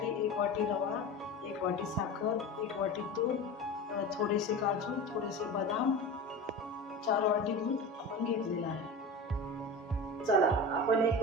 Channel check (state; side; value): normal; both; correlation 0.30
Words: 1 वाटी रवा, 1 वाटी साखर, 1 वाटी तूप, थोडेसे काजू, थोडेसे बदाम, 4 वाटी दूध आपण घेतलेलं आहे. चला आपण एक